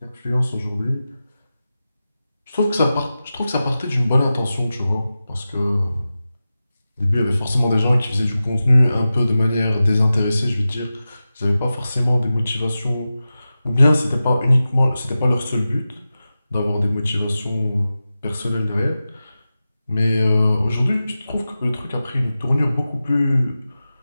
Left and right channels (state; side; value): inverted; both; correlation -0.94